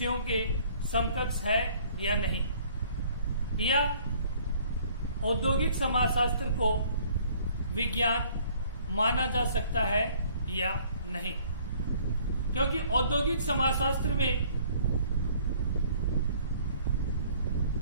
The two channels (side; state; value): both; inverted; correlation -0.57